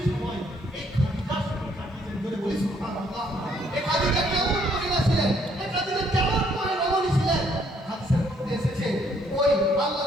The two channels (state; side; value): normal; both; correlation 0.67